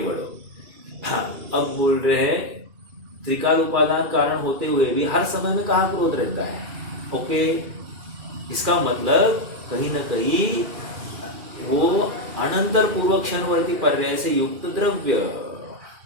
हाँ, अब बोल रहे हैं त्रिकाल उपादान कारण होते हुए भी हर समय में कहाँ क्रोध रहता है? ओके, इसका मतलब कहीं ना कहीं वो अनंतर पूर्वक क्षणवर्ती पर्याय से युक्त द्रव्य।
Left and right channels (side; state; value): left; late; 2.4 ms